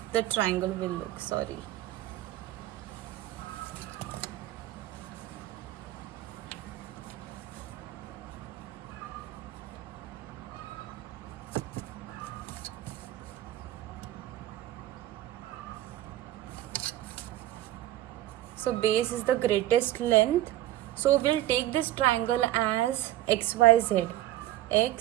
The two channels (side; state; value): left; quieter; 14.4 dB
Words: the triangle will look, sorry. So base is the greatest length. So we'll take this triangle as XYZ.